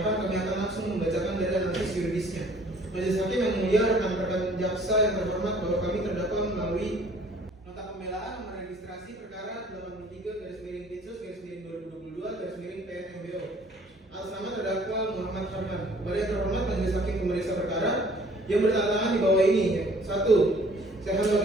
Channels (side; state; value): both; normal; correlation 0.55